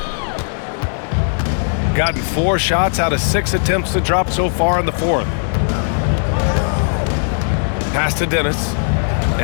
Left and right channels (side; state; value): right; silent; 65 dB below the other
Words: Gotten 4 shots out of 6 attempts to drop so far in the fourth. Pass to Dennis.